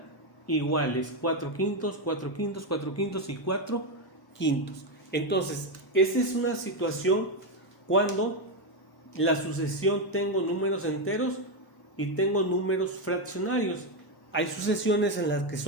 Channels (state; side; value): normal; both; correlation 0.06